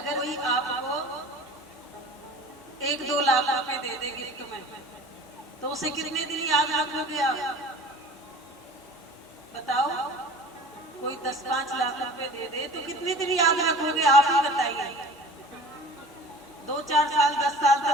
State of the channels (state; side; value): normal; both; correlation 0.42